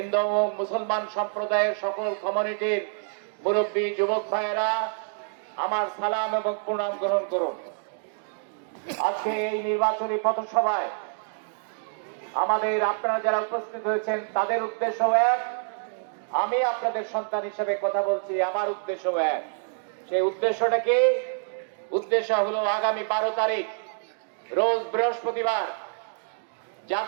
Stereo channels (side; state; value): left; silent; digital silence